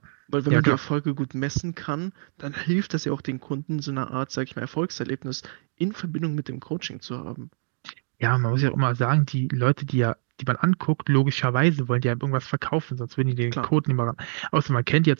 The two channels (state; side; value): silent; left; digital silence